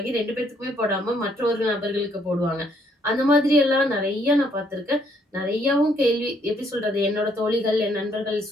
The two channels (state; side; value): normal; both; correlation 0.68